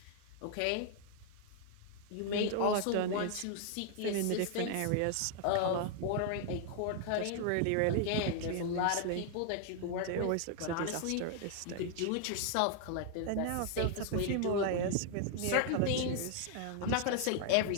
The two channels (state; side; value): different; both; correlation 0.00